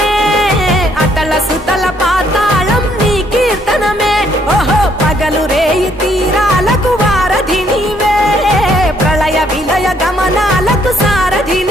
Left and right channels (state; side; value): normal; both; correlation 0.68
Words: అతల సుతల పాతాళం నీ కీర్తనమే ఓహో పగలు రేయి తీరాలకు వారధి నీవే ప్రళయ విలయ గమనాలకు సారథి